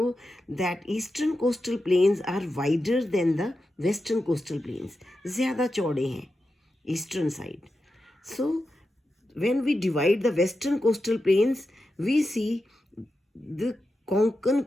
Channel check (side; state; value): both; normal; correlation 0.90